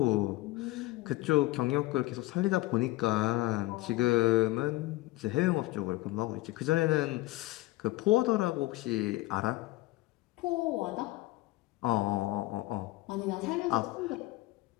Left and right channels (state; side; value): quieter; right; 19.0 dB